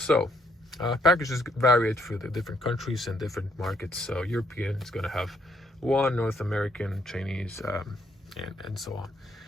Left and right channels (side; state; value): both; normal; correlation 0.72